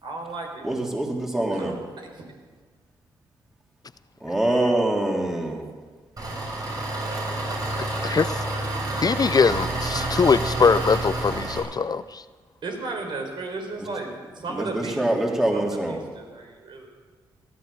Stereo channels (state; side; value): normal; both; correlation 0.71